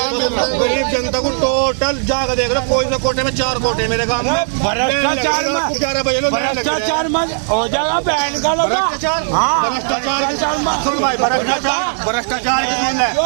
मिल रहा है? गरीब जनता को टोटल जाकर देख रहे, कोई से कोटे में 4 कोटे मेरे गाँव में भ्रष्टाचार में हो जाएगा बहन का लोग। भ्रष्टाचार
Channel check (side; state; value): left; silent; 63 dB below the other